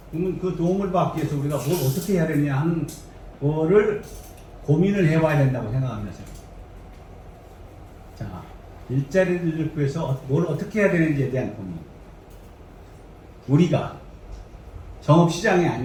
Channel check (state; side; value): identical; both; correlation 1.00